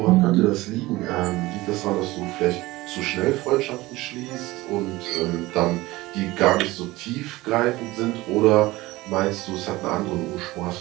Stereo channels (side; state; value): left; quieter; 19.4 dB